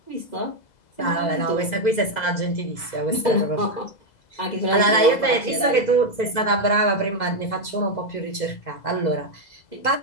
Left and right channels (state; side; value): late; right; 2.0 ms